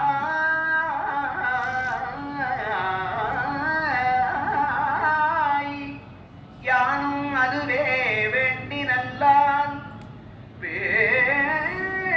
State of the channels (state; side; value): identical; both; correlation 1.00